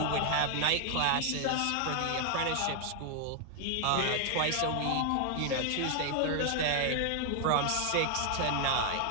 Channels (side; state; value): both; different; correlation 0.00